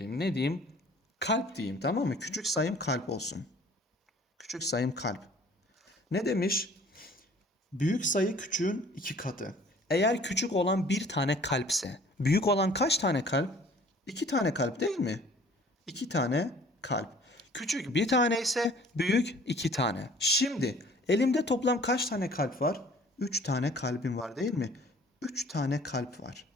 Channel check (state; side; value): normal; both; correlation 0.52